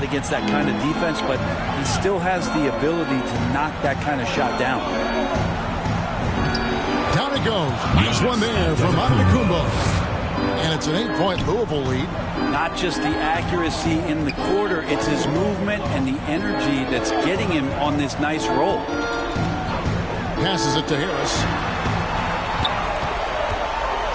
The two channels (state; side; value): identical; both; correlation 1.00